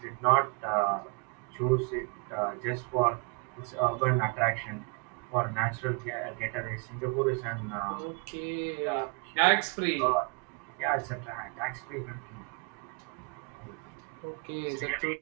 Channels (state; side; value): quieter; left; 35.0 dB